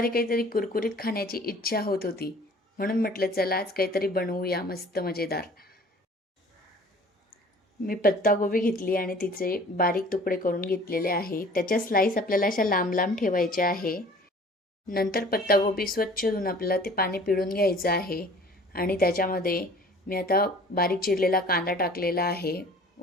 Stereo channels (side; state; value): both; normal; correlation 0.49